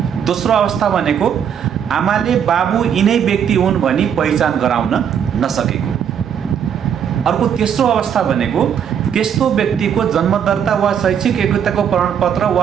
दोस्रो अवस्था भनेको आमाले बाबु यिनै व्यक्ति हुन् भनी पहिचान गराउन नसकेको। अर्को तेस्रो अवस्था भनेको त्यस्तो व्यक्तिको जन्मदर्ता वा शैक्षिक योग्यताको प्रमाणपत्र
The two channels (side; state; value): left; quieter; 8.3 dB